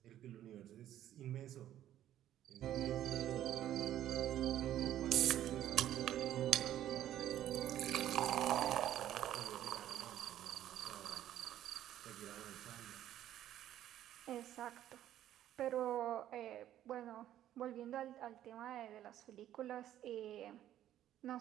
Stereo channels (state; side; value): quieter; left; 12.0 dB